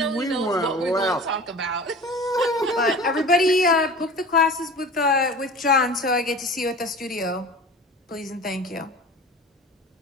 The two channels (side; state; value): both; normal; correlation 0.38